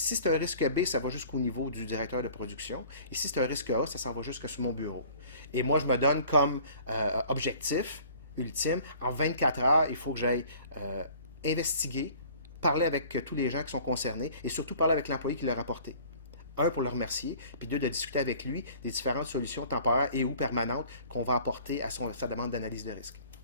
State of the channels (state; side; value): inverted; both; correlation -0.50